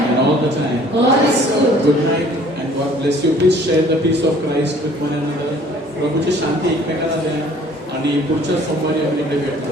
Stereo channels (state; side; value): normal; both; correlation 0.54